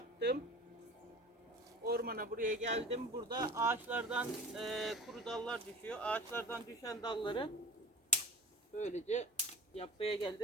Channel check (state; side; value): normal; both; correlation 0.38